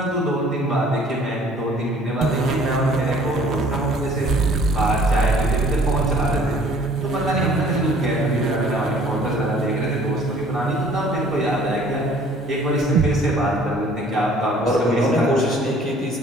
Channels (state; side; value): normal; both; correlation 0.54